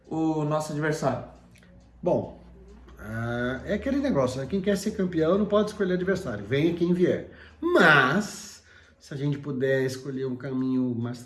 o nosso adversário? Bom, é aquele negócio, né? Quem quer ser campeão não pode escolher adversário, venha quem vier. Mas, se a gente puder escolher um caminho mais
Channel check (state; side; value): identical; both; correlation 1.00